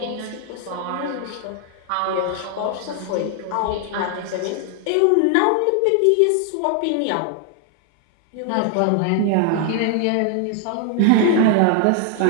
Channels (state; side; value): different; both; correlation 0.00